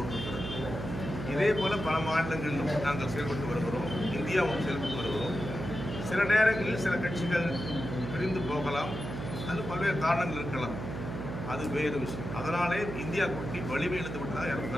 இதே போல பல மாநிலங்களிலும் நாங்கள் செயல்பட்டு வருகிறோம். இந்தியாவும் செயல்பட்டு வருகிறோம். சில நேரங்களில் சில கட்சிகள் பிரிந்து போகலாம். அது பல்வேறு காரணங்கள் இருக்கலாம். அது வேறு விஷயம். அதனாலே இந்தியா கூட்டணி வலிமை இழந்து விட்டதாக யாரும்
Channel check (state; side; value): noise; right; hum, 6 dB below the sound